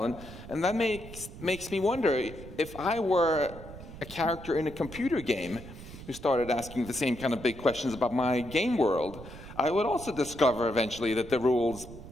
And that makes me wonder, if I were a character in a computer game who started asking the same kind of big questions about my game world, I would also discover eventually that the rules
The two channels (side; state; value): right; noise; rumble, 14 dB below the sound